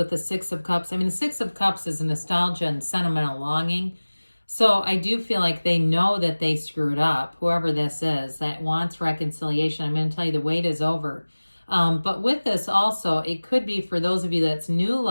the Six of Cups, the Six of Cups is nostalgia and sentimental longing. So I do feel like they know that they screwed up, whoever this is that wants reconciliation. I'm going to tell you the wait is over. But with this also, it could be for those of you that's new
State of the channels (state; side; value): inverted; both; correlation -1.00